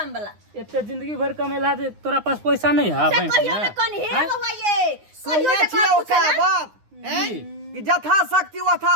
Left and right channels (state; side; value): late; left; 9.7 ms